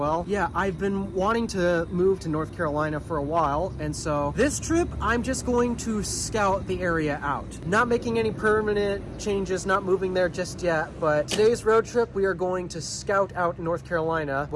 Yeah, I've been wanting to move to North Carolina for a while, and so this trip, I'm just going to scout the area out. Not making any permanent changes, not moving there just yet, but today's road trip, we are going to scout out North Carolina.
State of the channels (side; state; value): both; identical; correlation 1.00